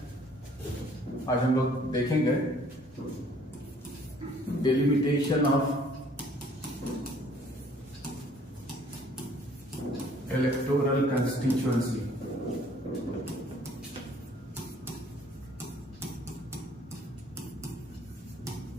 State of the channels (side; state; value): both; normal; correlation 0.58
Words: आज हम लोग देखेंगे डिलिमिटेशन ऑफ इलेक्टोरल कंस्टिट्यूएंसी।